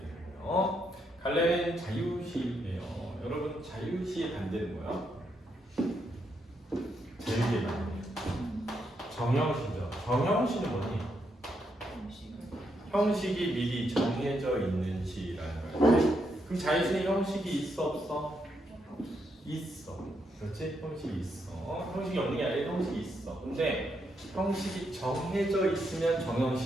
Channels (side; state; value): both; normal; correlation 0.79